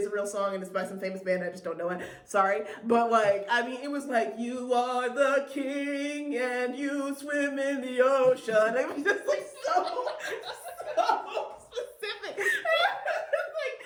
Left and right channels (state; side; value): identical; both; correlation 1.00